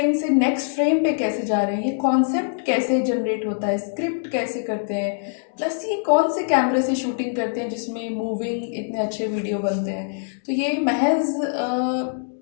से नेक्स्ट फ्रेम पे कैसे जा रहे हैं, ये कॉन्सेप्ट कैसे जनरेट होता है, स्क्रिप्ट कैसे करते हैं, प्लस ये कौन से कैमरे से शूटिंग करते हैं जिसमें मूविंग इतने अच्छे वीडियो बनते हैं। तो ये महज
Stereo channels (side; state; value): right; silent; digital silence